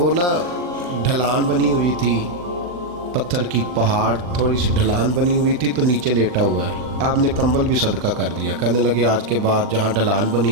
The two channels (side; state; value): left; late; 40 ms